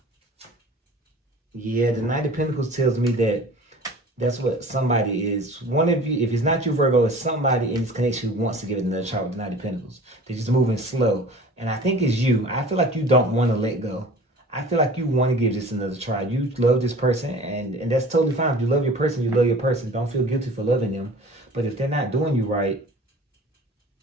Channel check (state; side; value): normal; both; correlation 0.43